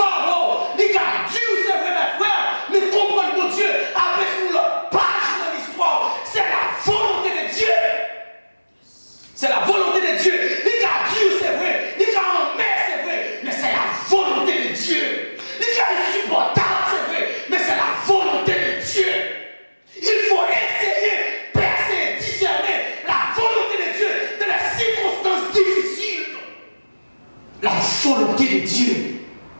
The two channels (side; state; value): both; inverted; correlation -1.00